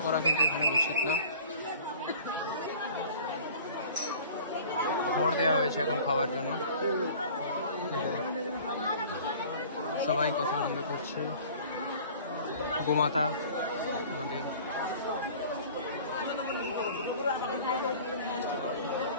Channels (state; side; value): inverted; both; correlation -0.45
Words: করা কিন্তু এখানে উচিত না। খড় দেওয়া হয়েছে এখন খাবার জন্য। সবাই কত আনন্দ করছে। গোমাতা আমাদের